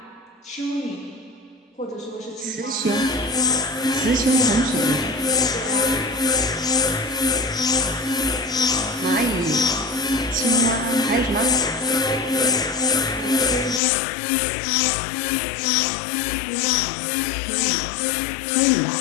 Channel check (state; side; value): drops out; right; at 13.8 s